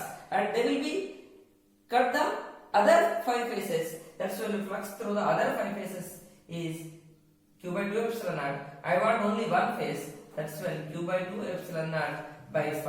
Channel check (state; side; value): identical; both; correlation 1.00